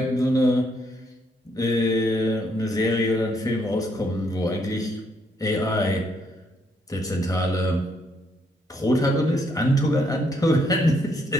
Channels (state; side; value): normal; both; correlation 0.73